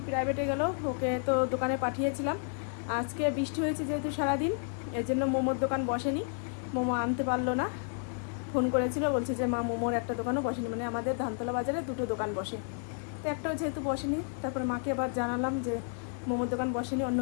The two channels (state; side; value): silent; right; 56 dB below the other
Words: প্রাইভেটে গেল, ওকে তো দোকানে পাঠিয়েছিলাম। আজকে বৃষ্টি হয়েছে যেহেতু সারাদিন, এর জন্য মোমোর দোকান বসেনি, মোমো আনতে পারলো না। ফোন করেছিল, বলছে যে মা মোমোর একটা দোকানও বসেনি, মানে আমাদের ধানতলা বাজারে দুটো দোকান বসে, তো একটাও যেহেতু বসেনি। তারপরে মাকে আবার জানালাম যে মোমোর দোকান বসেনি, অন্য